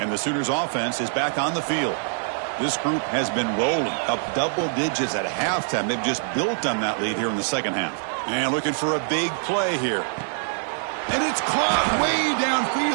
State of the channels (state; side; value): silent; left; digital silence